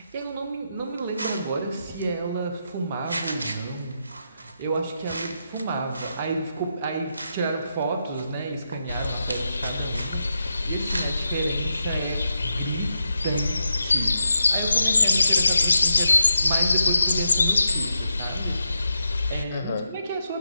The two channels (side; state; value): both; inverted; correlation -0.86